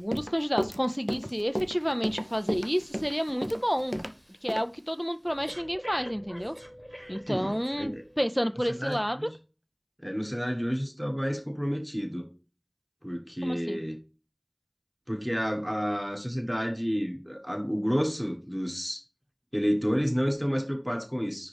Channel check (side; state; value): both; identical; correlation 1.00